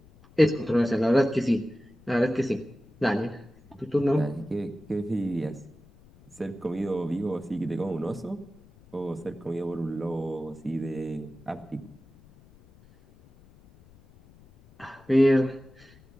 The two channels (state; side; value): noise; left; rumble, 26 dB below the sound